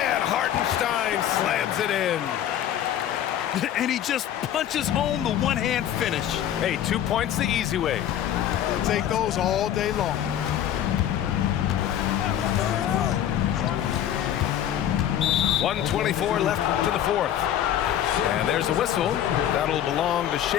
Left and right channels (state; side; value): quieter; right; 10.8 dB